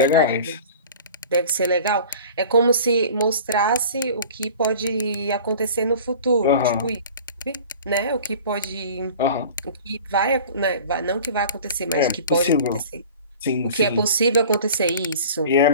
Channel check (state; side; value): inverted; both; correlation -0.42